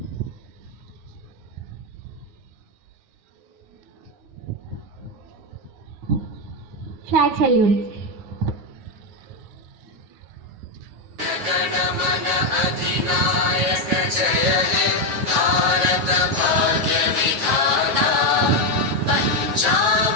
Flag salute. गणमन अधिनायक जय हे भारत भाग्य विधाता पंजाब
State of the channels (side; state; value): left; late; 9.5 ms